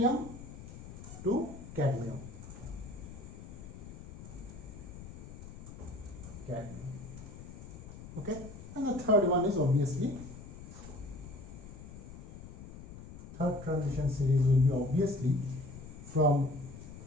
to cadmium. Okay, and the third one is obviously, third transition series will be obviously from,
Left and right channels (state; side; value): noise; left; rumble, 13 dB below the sound